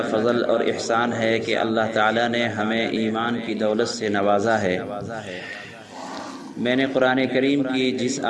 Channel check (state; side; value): identical; both; correlation 1.00